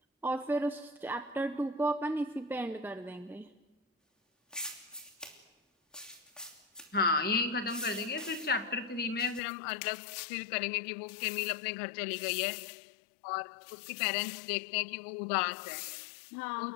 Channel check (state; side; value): drops out; right; at 9.4 s